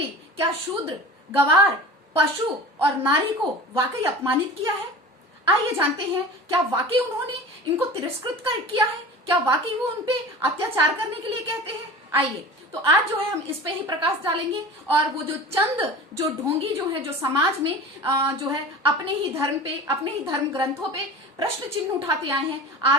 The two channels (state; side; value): normal; both; correlation 0.36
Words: क्या शूद्र, गवार, पशु और नारी को वाकई अपमानित किया है। आइए जानते हैं क्या वाकई उन्होंने इनको तिरस्कृत किया है, क्या वाकई वो उनपे अत्याचार करने के लिए कहते हैं। आइए तो आज जो है हम इस पे ही प्रकाश डालेंगे और वो जो ढोंगी जो है जो समाज में जो है अपने ही धर्म ग्रंथों पे प्रश्न चिन्ह उठाते आए हैं,